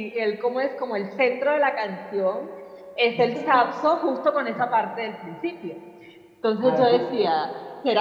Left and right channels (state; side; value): identical; both; correlation 1.00